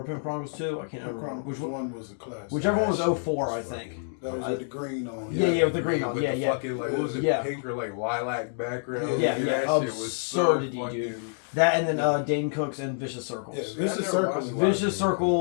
Pimp Chronicles 2, I can't remember which one. Was a classic. Whichever one was 04, I think. That was with the green on. Yeah, with the green on. With Yeah. Fucking, like, what was it? Pink or like lilac background. Yeah. That shit was Absurdity, so dude. fucking... That and then Dane Cook's and Vicious Circles. Yeah, Vicious Circles. Vicious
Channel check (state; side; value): silent; right; digital silence